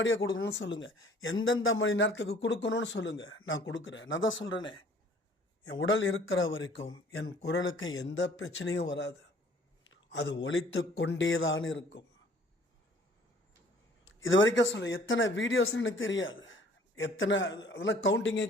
கொடுக்கணும்னு சொல்லுங்கள், எந்தெந்த மணி நேரத்துக்கு கொடுக்கணும்னு சொல்லுங்கள், நான் கொடுக்குறேன். நான் தான் சொல்கிறேனே, என் உடல் இருக்கிற வரைக்கும் என் குரலுக்கு எந்த பிரச்சனையும் வராது. அது ஒலித்து கொண்டே தான் இருக்கும். இது வரைக்கும் சொல்ல எத்தனை வீடியோஸ்ன்னு எனக்கு தெரியாது, எத்தனை அதெல்லாம் கவுண்டிங்கே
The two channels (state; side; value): normal; both; correlation 0.55